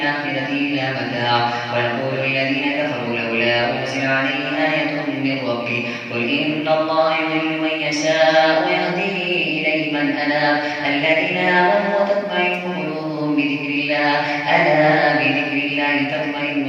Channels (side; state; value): both; identical; correlation 1.00